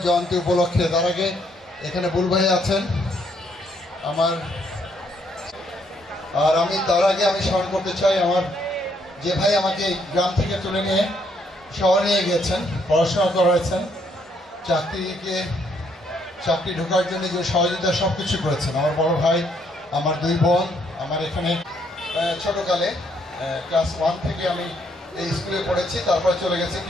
জয়ন্তী উপলক্ষে। তার আগে এখানে বুল ভাই আছেন আমার, আর আমি তার আগে আমি স্মরণ করতে চাই আমার যে ভাই আমাকে গ্রাম থেকে তুলে নিয়ে শহরে নিয়ে গিয়েছেন, পড়াশোনা করাইছেন, চাকরি ঢোকার জন্য যে সহযোগিতা সব কিছু করেছেন। আমার বড় ভাই, আমার দুই বোন, আমার এখানে ছোটকালে ক্লাস 1 থেকে আমি এই স্কুলে পড়েছি, তারপরে চলে গেছি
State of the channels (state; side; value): normal; both; correlation 0.71